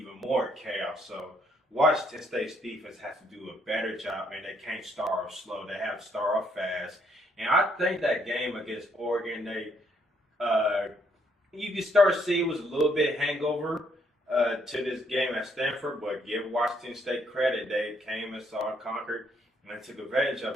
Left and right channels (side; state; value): both; normal; correlation 0.71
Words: more chaos. So Washington State's defense has to do a better job, and they can't start off slow. They have to start off fast. And I think that game against Oregon, you can start to see it was a little bit hangover to this game at Stanford, but give Washington State credit. They came and saw and conquered and took advantage of